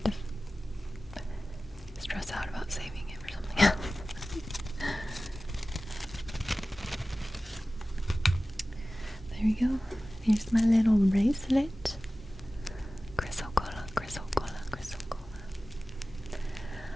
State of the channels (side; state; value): both; normal; correlation 0.96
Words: to stress out about saving it for something else. There we go. Here's my little bracelet. Chrysocolla, chrysocolla, chrysocolla.